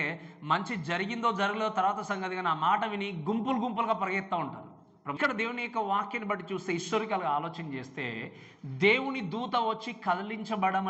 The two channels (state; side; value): identical; both; correlation 1.00